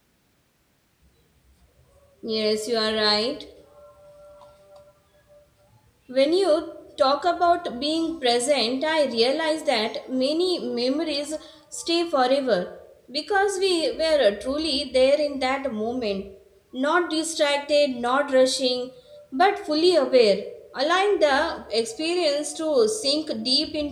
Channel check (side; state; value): both; identical; correlation 1.00